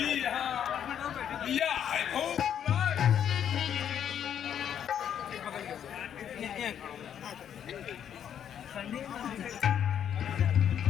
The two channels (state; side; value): quieter; right; 9.2 dB